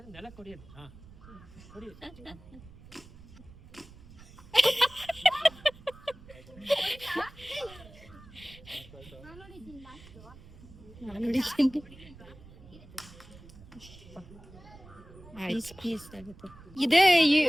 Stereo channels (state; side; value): noise; right; rumble, 20 dB below the sound